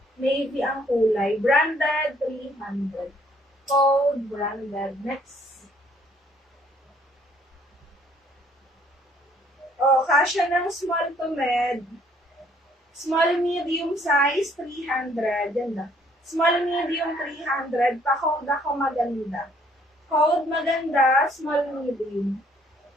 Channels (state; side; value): normal; both; correlation 0.63